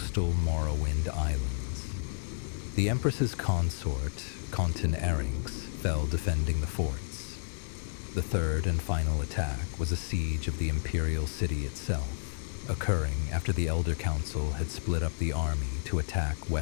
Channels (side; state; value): right; silent; digital silence